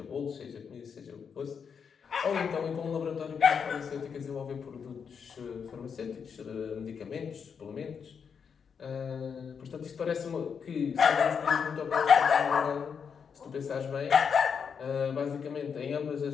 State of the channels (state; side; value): quieter; right; 6.6 dB